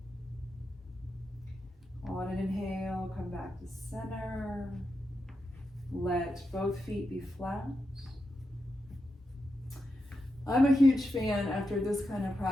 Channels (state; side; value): normal; both; correlation 0.87